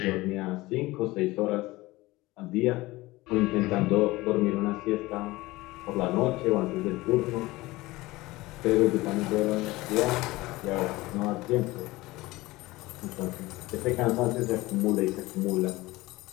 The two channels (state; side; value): quieter; right; 19.8 dB